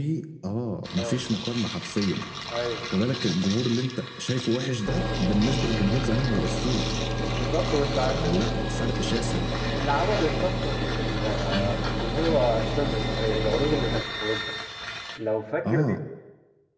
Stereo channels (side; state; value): both; identical; correlation 1.00